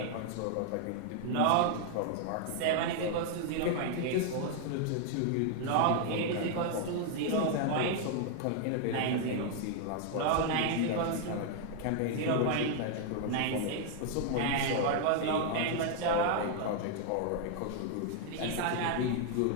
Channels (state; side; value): different; both; correlation 0.00